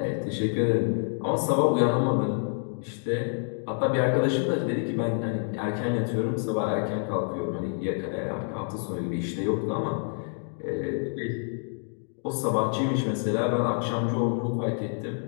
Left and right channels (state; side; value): silent; right; 60 dB below the other